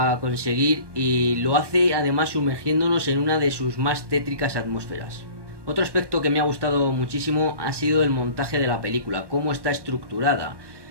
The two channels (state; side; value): late; left; 1.2 ms